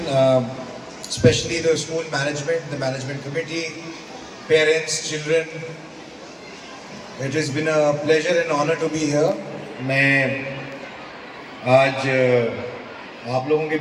especially the school management, the management committee, parents, children. It has been a pleasure and honor to be here. मैं आज आप लोगों के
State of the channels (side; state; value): both; identical; correlation 1.00